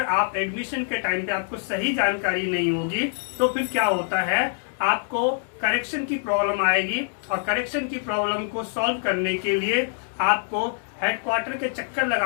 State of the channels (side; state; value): right; silent; digital silence